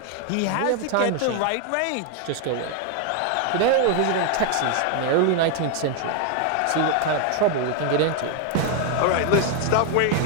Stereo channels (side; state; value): both; different; correlation 0.00